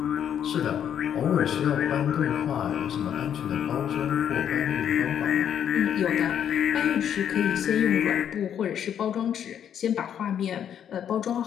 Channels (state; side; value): quieter; right; 9.2 dB